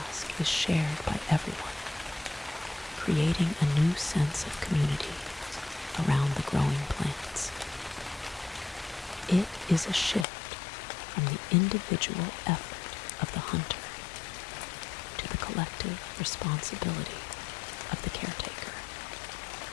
is shared by everyone, creating a new sense of community around the growing plants. It is a shift from the individual effort of the hunter to the collective responsibility of the caretaker.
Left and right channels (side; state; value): right; drops out; at 10.2 s